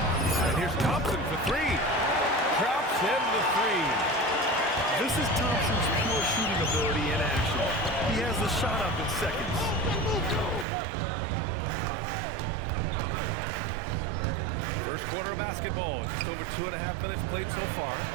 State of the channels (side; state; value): left; drops out; at 10.7 s